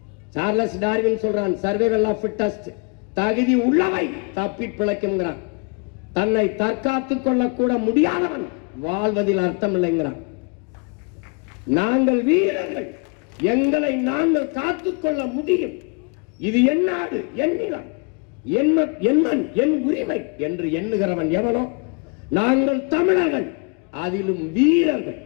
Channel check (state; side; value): quieter; right; 32.9 dB